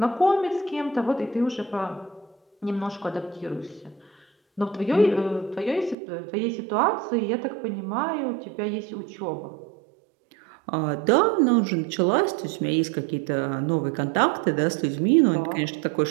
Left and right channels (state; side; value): drops out; left; at 6.0 s